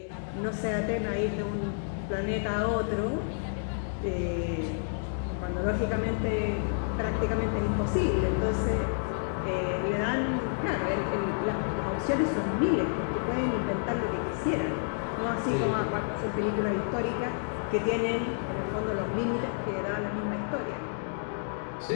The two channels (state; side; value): silent; right; digital silence